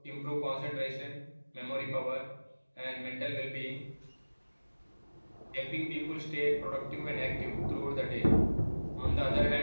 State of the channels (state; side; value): inverted; both; correlation -1.00